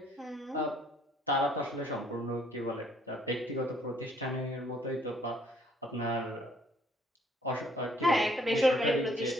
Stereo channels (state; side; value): normal; both; correlation 0.64